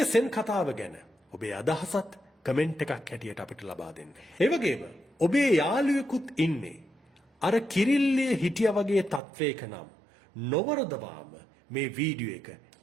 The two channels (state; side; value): drops out; left; at 9.2 s